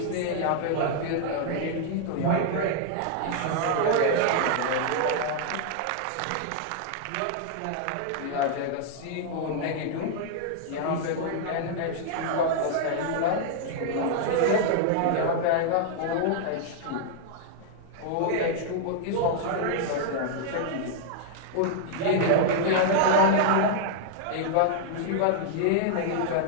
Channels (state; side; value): different; both; correlation -0.01